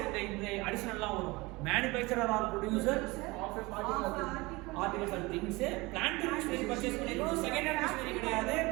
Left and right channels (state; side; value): quieter; left; 23.0 dB